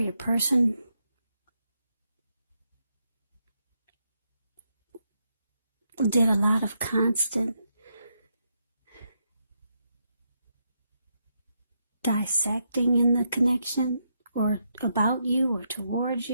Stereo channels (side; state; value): both; inverted; correlation -0.80